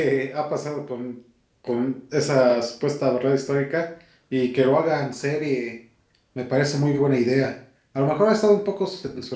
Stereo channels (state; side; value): identical; both; correlation 1.00